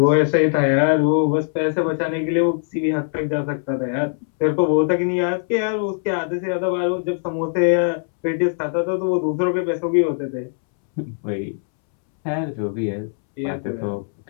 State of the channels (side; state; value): right; silent; 65 dB below the other